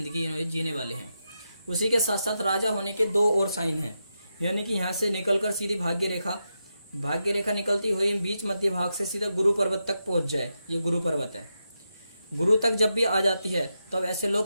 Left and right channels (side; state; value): both; inverted; correlation -0.87